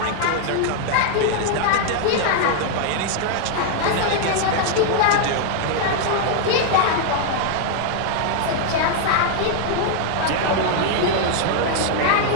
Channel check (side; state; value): both; different; correlation 0.00